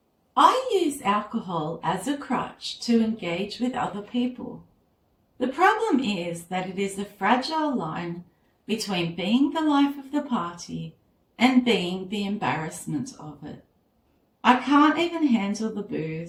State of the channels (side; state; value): both; identical; correlation 1.00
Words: I use alcohol as a crutch to engage with other people. The problem is that it is a fragile line between being the life of the party and being the embarrassment of it. I can't even handle the